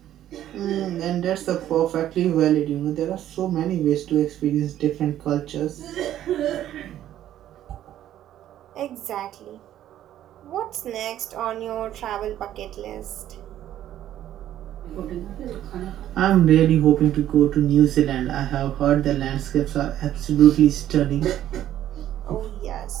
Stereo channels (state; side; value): quieter; left; 12.0 dB